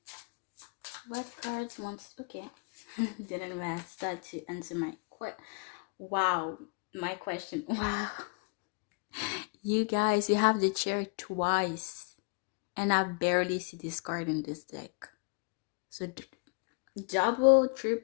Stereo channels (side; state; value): right; quieter; 34.1 dB